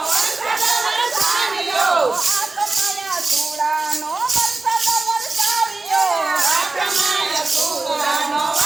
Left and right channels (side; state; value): left; quieter; 3.5 dB